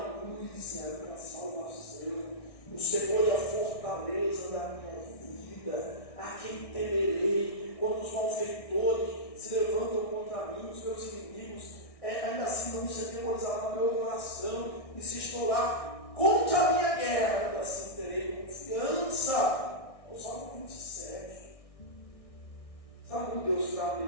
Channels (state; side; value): late; right; 1.6 ms